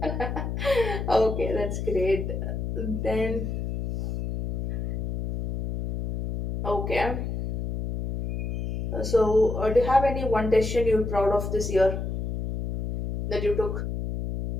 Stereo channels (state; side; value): noise; left; hum, 3 dB below the sound